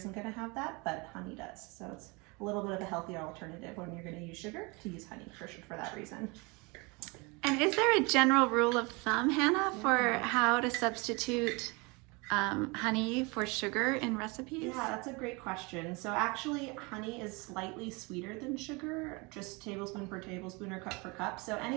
going to have that, but honey does. So it's a little bit of a healthier alternative when you're going to use sugar, to use honey for that reason. And is there a general rule of thumb, Hannah, for how to substitute honey for sugar in recipes? Yeah, that's a great question. So actually, honey is slightly sweeter than sugar, just tablespoon per tablespoon or cup per cup. So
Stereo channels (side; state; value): left; quieter; 27.6 dB